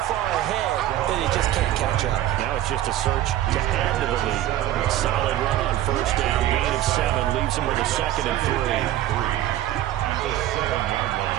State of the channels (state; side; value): quieter; left; 13.2 dB